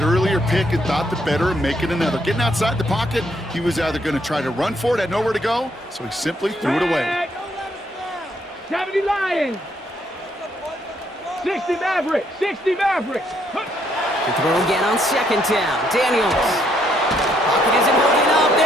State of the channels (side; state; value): both; normal; correlation 0.71